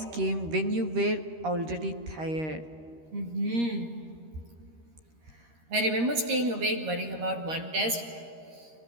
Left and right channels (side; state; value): left; late; 13 ms